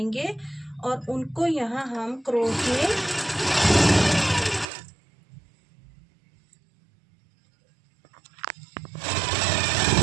और उनको यहाँ हम क्रोश में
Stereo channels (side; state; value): left; drops out; at 4.7 s